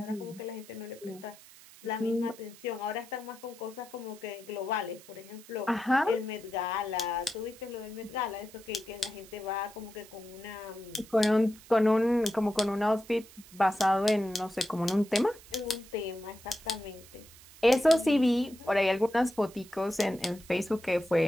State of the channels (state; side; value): noise; right; hiss, 21 dB below the sound